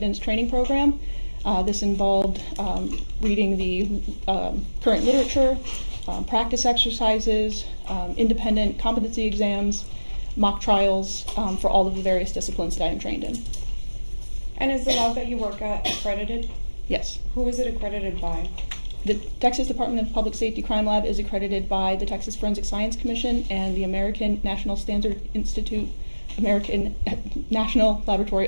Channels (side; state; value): both; inverted; correlation -1.00